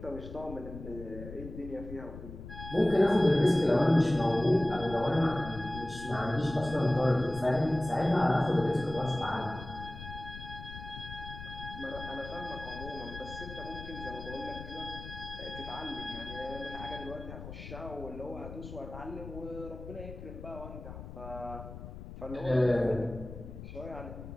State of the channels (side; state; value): left; noise; rumble, 11 dB below the sound